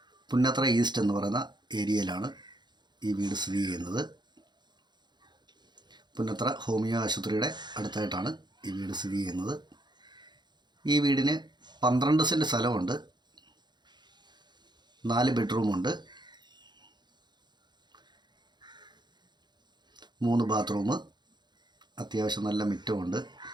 പുന്നത്ര ഈസ്റ്റ് എന്ന് പറയുന്ന ഏരിയയിലാണ് ഈ വീട് സ്ഥിതി ചെയ്യുന്നത്. പുന്നത്ര ഹോമിയോ ആശുപത്രിയുടെ അടുത്തായിട്ടാണ് ഈ വീട് സ്ഥിതി ചെയ്യുന്നത്. ഈ വീടിന് 12 സെൻറ്റ് സ്ഥലമുണ്ട്, 4 ബെഡ്റൂമുണ്ട്, 3 ബാത്റൂം, അത്യാവശ്യം നല്ല മുറ്റമുണ്ട്.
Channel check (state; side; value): late; left; 0.21 ms